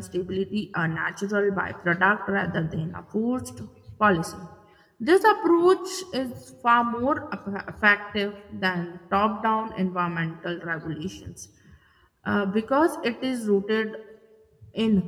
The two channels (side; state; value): both; identical; correlation 1.00